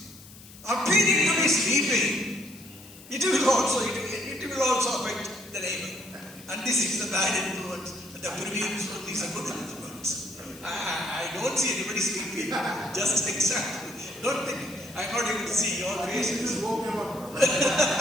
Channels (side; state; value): left; noise; hiss, 20 dB below the sound